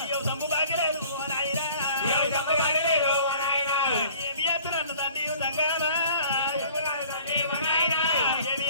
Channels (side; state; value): both; inverted; correlation -0.51